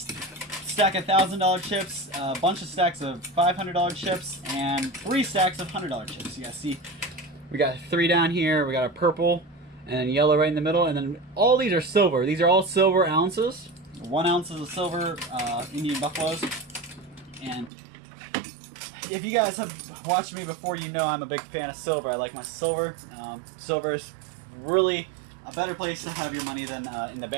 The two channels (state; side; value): drops out; left; at 17.7 s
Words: of $1,000 chips, a bunch of stacks of $500 chips, and 3 stacks of $100 chips. You guys see, we got 3 down here, we got a purple, and then yellow right in the middle, and then all these are silver. These are all silver ounces. 1 ounce of silver Indian buffaloes. And if you guys have watched me before, you know I'm a big fan of silver. I like my silver. Silver is really a better place to have your money than in the